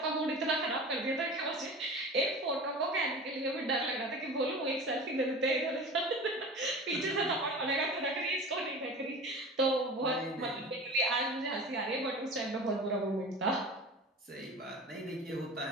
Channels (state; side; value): normal; both; correlation 0.35